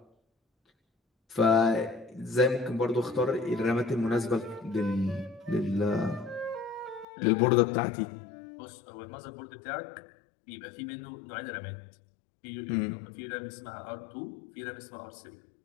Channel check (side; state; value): right; drops out; at 7.1 s